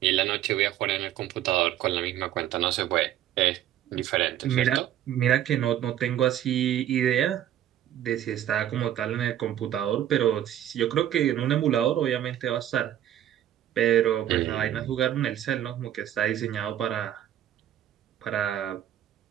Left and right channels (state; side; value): quieter; left; 11.6 dB